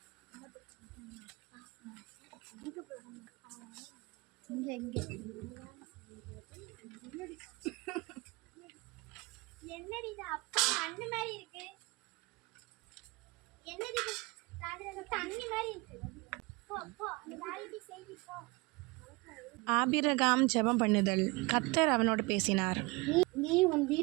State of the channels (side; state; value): left; quieter; 25.4 dB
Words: என்னடி இது அப்பா அண்ணு மாதிரி இருக்கு? என்னடி தண்ணி மாதிரி இருக்கு? ஆபிரகாம் ஜெபம் பண்ணுதல். கர்த்தர் அவனோடு பேசினார். நீ உன்